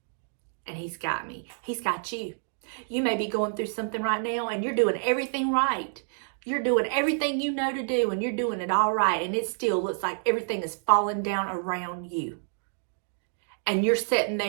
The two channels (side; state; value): left; silent; digital silence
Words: And he's got me. He's got you. You may be going through something right now and you're doing everything right. You're doing everything you know to do and you're doing it all right. And it still looks like everything is falling down around you. And you're sitting